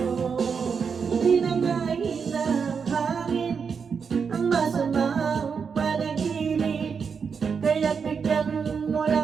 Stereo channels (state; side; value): quieter; left; 6.0 dB